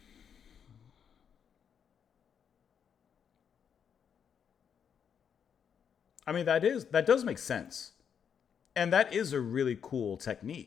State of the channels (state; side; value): quieter; right; 7.6 dB